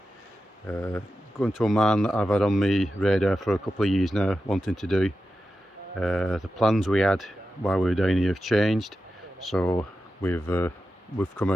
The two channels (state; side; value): normal; both; correlation 0.91